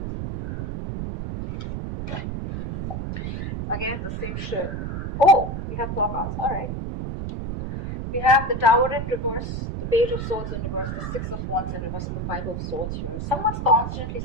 Again, the same shit. Oh, we have 4 cards. Alright. We have the Tower in reverse, the Page of Swords in reverse, the Six of Wands in reverse, and the Five of Swords here. Someone's constantly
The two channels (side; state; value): right; noise; rumble, 4 dB below the sound